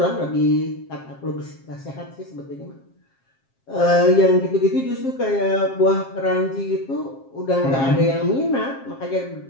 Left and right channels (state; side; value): late; right; 7.5 ms